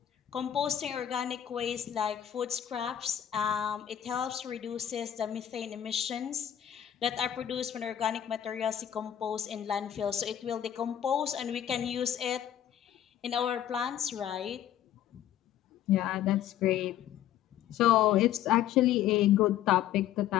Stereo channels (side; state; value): right; quieter; 10.9 dB